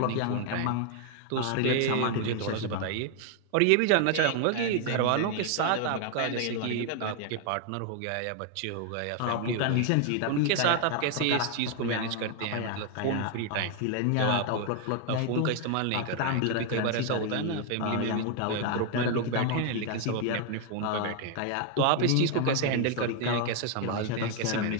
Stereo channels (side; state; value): both; different; correlation 0.00